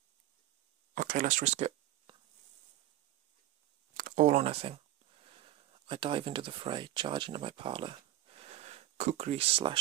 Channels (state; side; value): quieter; left; 14.6 dB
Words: Okay, let's risk it. All or nothing. I dive into the fray, charge into my parlour. Kukri